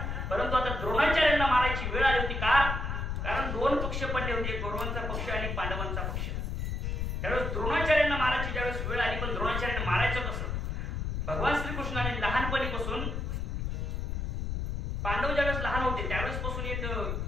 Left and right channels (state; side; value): noise; left; rumble, 2 dB below the sound